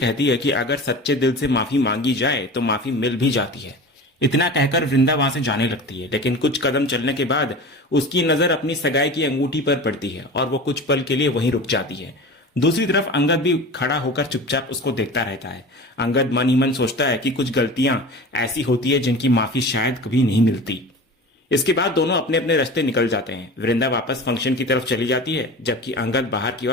है कि अगर सच्चे दिल से माफी मांगी जाए तो माफी मिल भी जाती है। इतना कहकर वृंदा वहां से जाने लगती है, लेकिन कुछ कदम चलने के बाद उसकी नजर अपनी सगाई की अंगूठी पर पड़ती है और वो कुछ पल के लिए वहीं रुक जाती है। दूसरी तरफ अंगद भी खड़ा होकर चुपचाप उसको देखता रहता है। अंगद मन ही मन सोचता है कि कुछ गलतियां ऐसी होती है जिनकी माफी शायद कभी नहीं मिलती। इसके बाद दोनों अपने अपने रास्ते निकल जाते हैं। वृंदा वापस फंक्शन की तरफ चली जाती है जबकि अंगद बाहर की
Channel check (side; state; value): both; normal; correlation 0.34